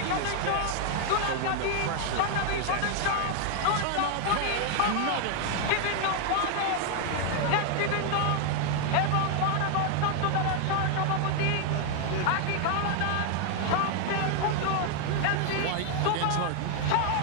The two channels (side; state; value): both; different; correlation 0.00